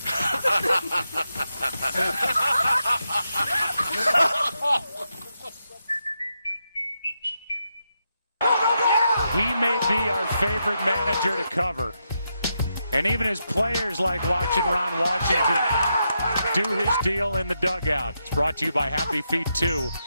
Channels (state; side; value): inverted; both; correlation -0.84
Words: He may be our favorite manager to cover. And even his players like watching Ron Washington do his deal in the dugout. It's brought to you by Happy Feet 2.